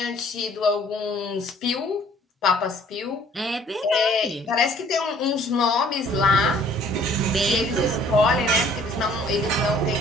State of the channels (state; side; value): normal; both; correlation 0.57